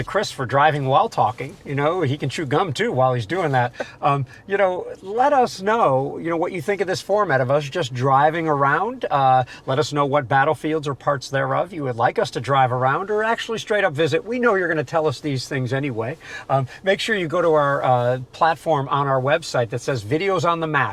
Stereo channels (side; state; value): both; identical; correlation 1.00